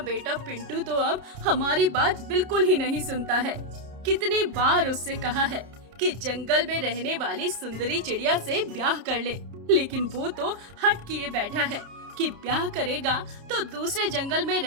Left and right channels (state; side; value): late; left; 30 ms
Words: बेटा पिंटू तो अब हमारी बात बिल्कुल ही नहीं सुनता है। कितनी बार उससे कहा है कि जंगल में रहने वाली सुंदरी चिड़िया से ब्याह कर ले, लेकिन वो तो हट किए बैठा है कि ब्याह करेगा तो दूसरे जंगल में